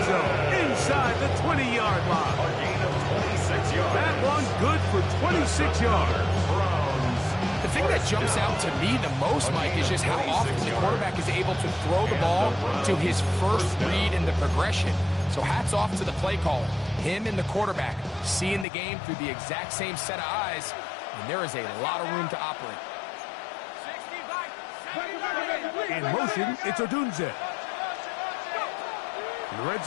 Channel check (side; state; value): right; drops out; at 18.7 s